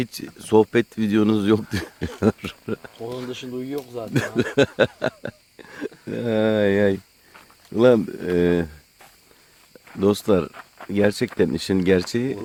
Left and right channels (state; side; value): identical; both; correlation 1.00